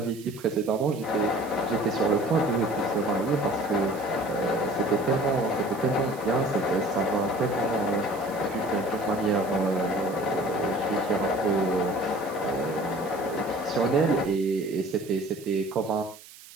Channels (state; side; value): noise; right; hiss, 20 dB below the sound